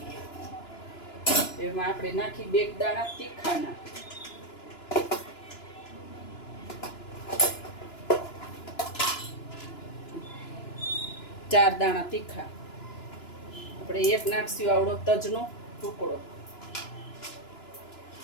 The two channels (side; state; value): right; late; 2.9 ms